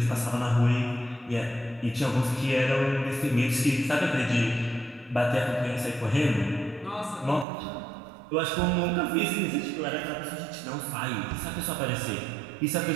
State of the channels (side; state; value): left; drops out; at 7.5 s